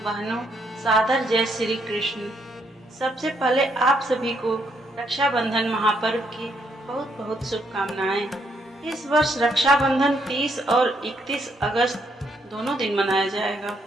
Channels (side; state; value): both; normal; correlation 0.74